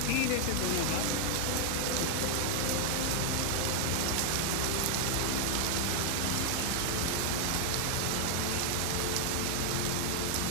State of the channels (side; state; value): both; different; correlation 0.00